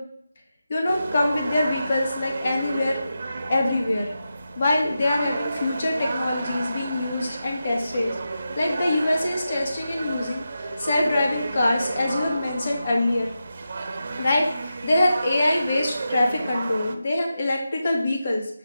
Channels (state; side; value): inverted; both; correlation -0.90